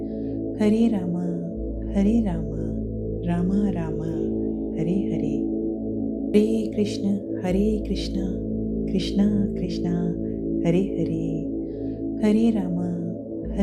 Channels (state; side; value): identical; both; correlation 1.00